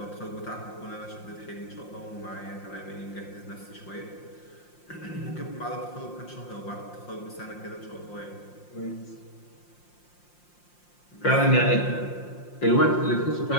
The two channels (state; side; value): late; right; 5.7 ms